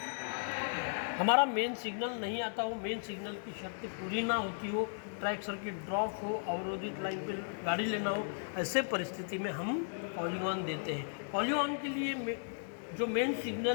हमारा मेन सिग्नल नहीं आता हो, मेन सिग्नल की शर्त पूरी ना होती हो, ट्रैक सर्किट ड्रॉप हो, अवरोधित लाइन पे गाड़ी लेना हो, ऐसे परिस्थिति में हम कॉलिंग ऑन देते हैं। कॉलिंग ऑन के लिए जो main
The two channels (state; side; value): silent; right; digital silence